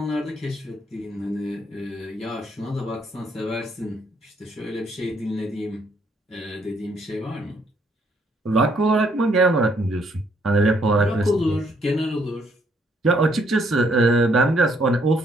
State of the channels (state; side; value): normal; both; correlation 0.69